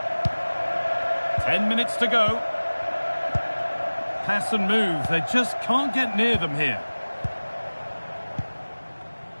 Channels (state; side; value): inverted; both; correlation -1.00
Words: 10 minutes to go. Pass and move. They just can't get near them here.